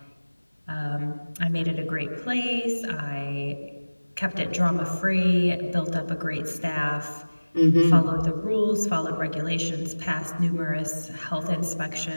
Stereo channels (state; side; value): inverted; both; correlation -1.00